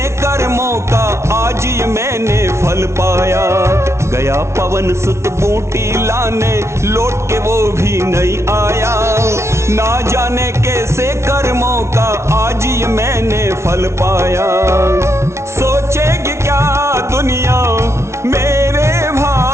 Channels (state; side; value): late; left; 0.13 ms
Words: कर्मों का आज ये मैंने फल पाया। गया पवन सुत बूटी लाने, लौट के वो भी नहीं आया। ना जाने कैसे कर्मों का आज ये मैंने फल पाया। सोचेगी क्या दुनिया मेरे